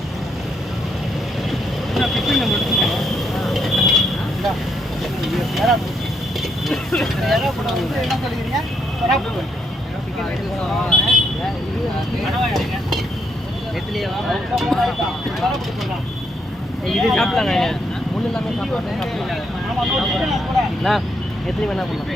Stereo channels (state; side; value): normal; both; correlation 0.75